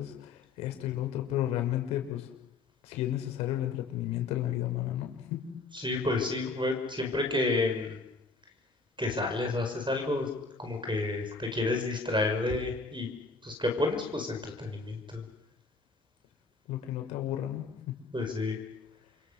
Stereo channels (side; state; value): right; quieter; 4.2 dB